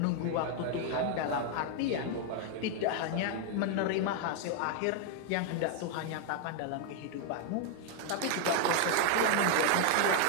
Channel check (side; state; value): both; different; correlation 0.00